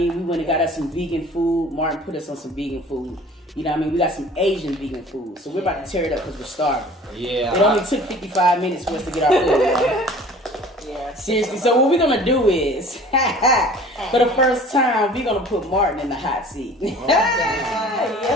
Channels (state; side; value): normal; both; correlation 0.47